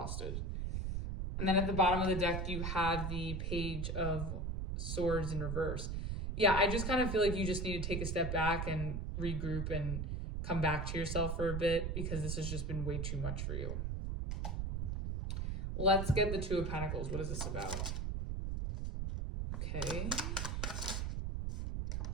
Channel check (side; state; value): right; noise; rumble, 2 dB below the sound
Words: And then at the bottom of the deck, you have the Page of Swords in reverse. Yeah, I just kind of feel like you just need to take a step back and regroup and come back to yourself for a bit, because this has just been way too much for you. Let's get the Two of Pentacles. What is this about? Okay.